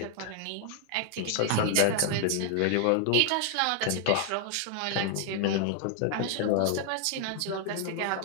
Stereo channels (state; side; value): different; both; correlation 0.00